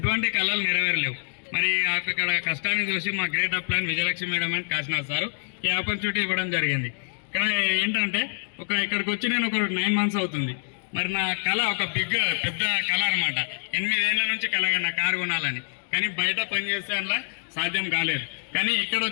కళలు నెరవేరలేవు. మరి అక్కడ కష్టాన్ని చూసి మా great upline Vijayalakshmi madam and Kashinath sir ఈ ఆపర్చునిటీ ఇవ్వడం జరిగింది. ఇక్కడ ఏంటంటే ఇక్కడికి వచ్చి నేను ఒక 9 months అవుతుంది. మరి నా కళ ఒక పెద్ద కళ అనమాట. 8 ఏళ్ల నుంచి కళ నా కారు కొనాలని. కానీ బయట పనిచేసే అలా సాధ్యం కాలేదు. కానీ ఇక్కడ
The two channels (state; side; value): silent; right; digital silence